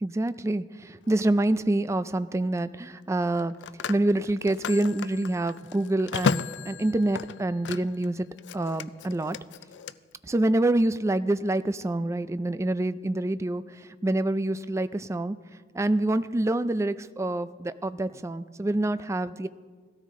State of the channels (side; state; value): both; normal; correlation 0.86